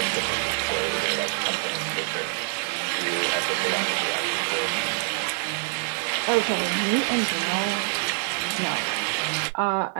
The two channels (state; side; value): silent; left; digital silence